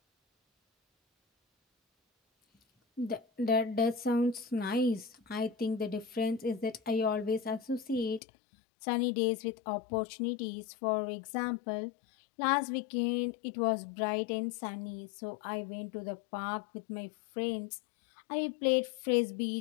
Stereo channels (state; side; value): drops out; right; at 8.2 s